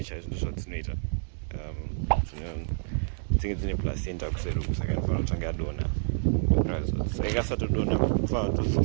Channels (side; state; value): left; silent; digital silence